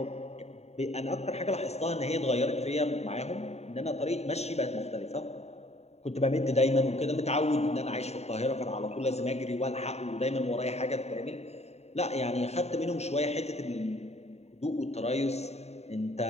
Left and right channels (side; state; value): right; late; 0.31 ms